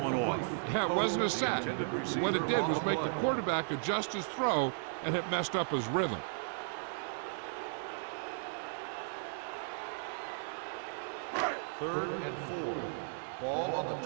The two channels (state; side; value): silent; left; digital silence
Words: one off. Yeah, it wasn't a sack. What it did was make the quarterback adjust his throw, and it messed up his rhythm. Third and 4. Ball on